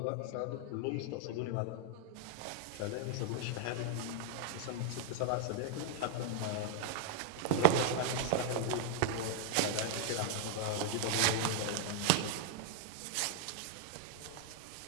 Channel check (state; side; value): different; both; correlation -0.01